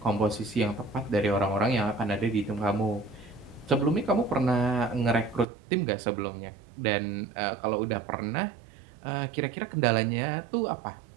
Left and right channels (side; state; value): left; drops out; at 5.5 s